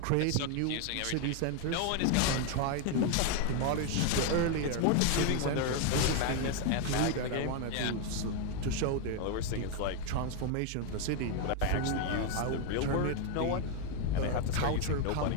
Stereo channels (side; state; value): both; different; correlation 0.01